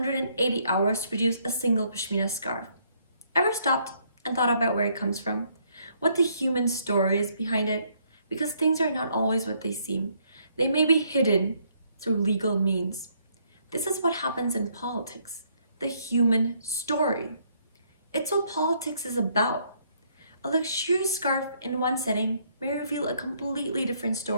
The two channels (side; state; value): both; inverted; correlation -0.69